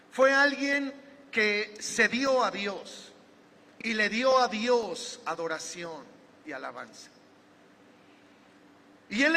Fue alguien que se dio a Dios y le dio a Dios adoración y alabanza. Y él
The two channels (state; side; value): identical; both; correlation 1.00